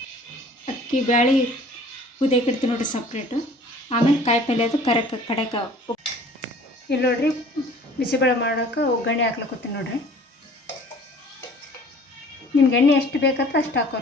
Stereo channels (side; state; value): both; normal; correlation 0.50